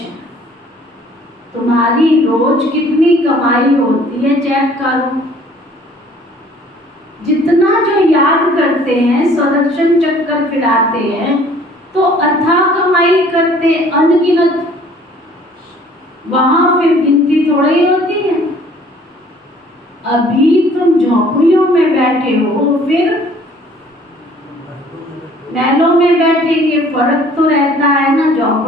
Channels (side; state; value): both; normal; correlation 0.55